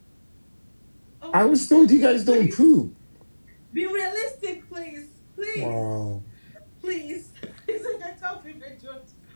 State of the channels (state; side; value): inverted; both; correlation -1.00